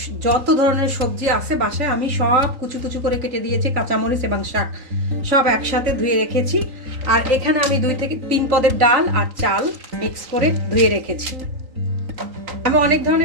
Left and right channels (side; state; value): left; late; 3.8 ms